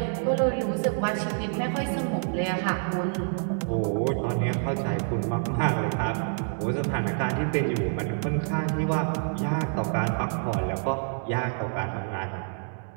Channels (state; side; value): silent; left; digital silence